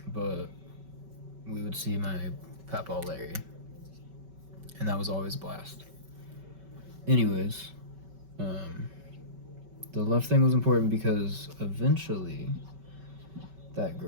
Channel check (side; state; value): left; late; 5.2 ms